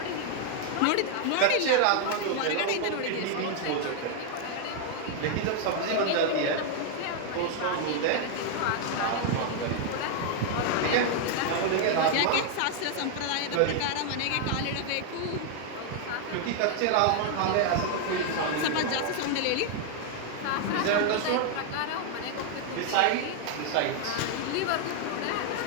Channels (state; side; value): different; both; correlation 0.00